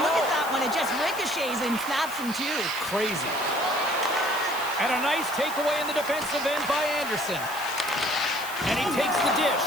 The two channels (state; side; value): noise; left; hiss, 13 dB below the sound